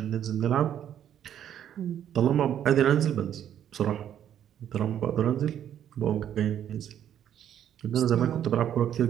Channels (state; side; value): quieter; left; 10.1 dB